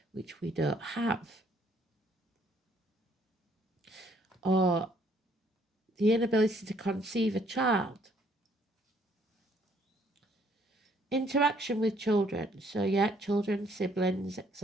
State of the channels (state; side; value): normal; both; correlation 0.65